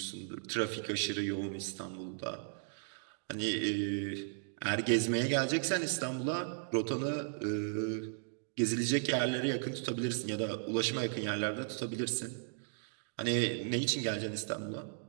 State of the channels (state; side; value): silent; left; digital silence